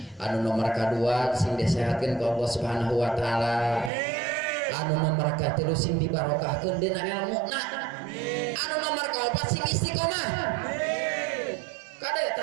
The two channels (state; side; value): drops out; left; at 3.9 s